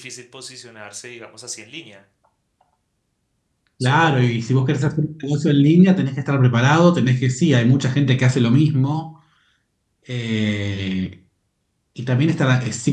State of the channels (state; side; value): identical; both; correlation 1.00